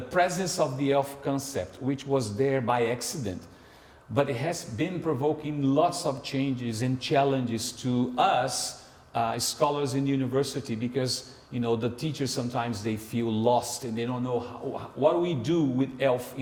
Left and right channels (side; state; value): both; identical; correlation 1.00